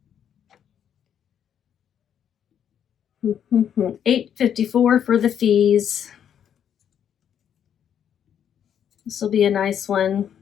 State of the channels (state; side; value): quieter; right; 9.0 dB